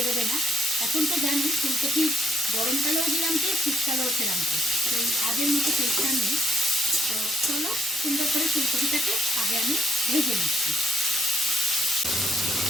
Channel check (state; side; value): normal; both; correlation 0.71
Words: না। এখন তো জানি ফুলকপি গরমকালেও দিলাম টেস্ট, শীতকালেও খেলাম টেস্ট, সেই আগের মতো টেস্টটা নেই। তো চলো সুন্দর করে ফুলকপিটাকে আগে আমি ভেজে নিচ্ছি।